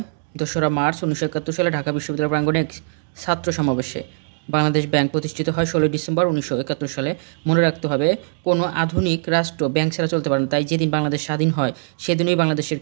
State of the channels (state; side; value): silent; left; digital silence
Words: 2রা মার্চ 1971 সালে ঢাকা বিশ্ববিদ্যালয় প্রাঙ্গণে এক ছাত্র সমাবেশে। বাংলাদেশ ব্যাংক প্রতিষ্ঠিত হয় 16 ডিসেম্বর 1971 সালে। মনে রাখতে হবে, কোনো আধুনিক রাষ্ট্র ব্যাংক ছাড়া চলতে পারে না, তাই যেদিন বাংলাদেশ স্বাধীন হয় সেদিনই বাংলাদেশের